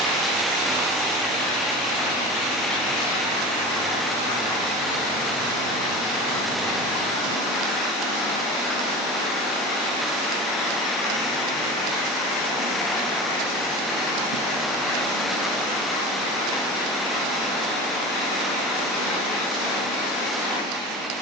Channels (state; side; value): normal; both; correlation 0.32